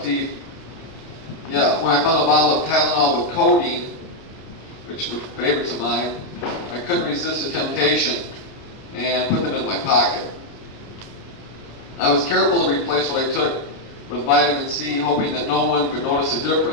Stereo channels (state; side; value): late; right; 29 ms